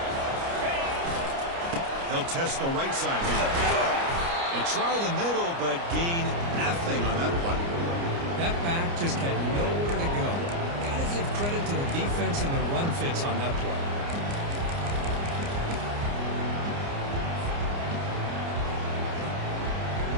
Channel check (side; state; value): left; late; 29 ms